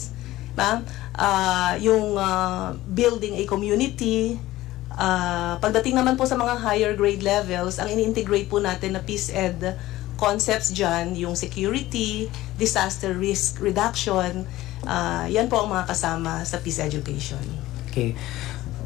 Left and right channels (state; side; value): quieter; right; 16.5 dB